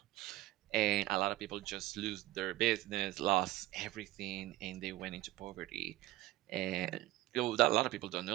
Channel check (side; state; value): left; quieter; 16.5 dB